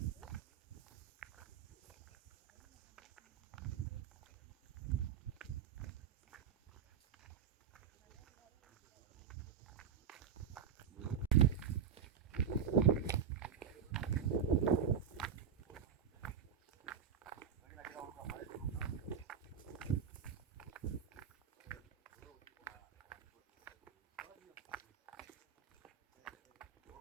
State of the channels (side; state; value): left; quieter; 7.6 dB